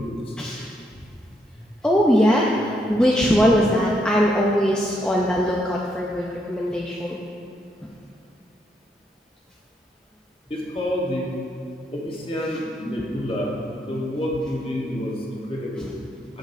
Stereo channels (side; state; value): both; normal; correlation 0.77